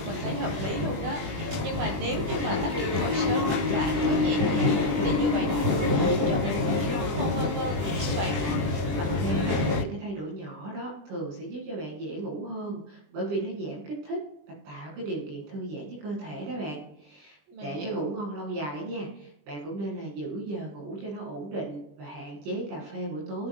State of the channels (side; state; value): left; late; 20 ms